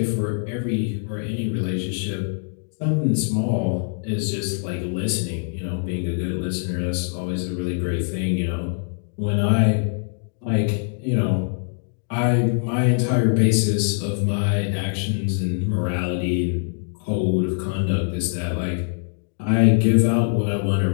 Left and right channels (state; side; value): silent; right; digital silence